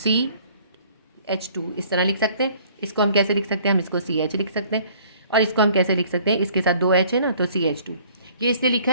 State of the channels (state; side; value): inverted; both; correlation -0.56